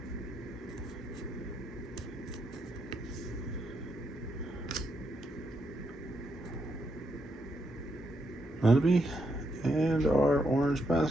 Nunby, and our orange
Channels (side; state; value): both; normal; correlation 0.79